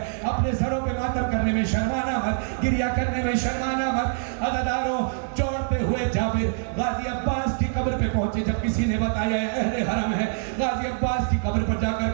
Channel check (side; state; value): left; silent; 58 dB below the other